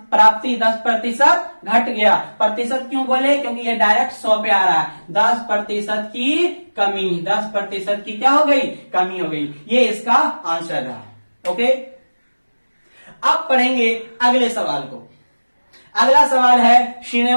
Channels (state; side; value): inverted; both; correlation -1.00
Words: प्राप्ति 10% घट गया। प्रतिशत क्यों बोले, क्योंकि ये डायरेक्ट 100 पे आ रहा है। 10% की कमी, 10% की क्या हो गई, कमी हो गई। ये इसका आंसर रहा। ओके, अब पढ़ेंगे अगले सवाल को। अगला सवाल है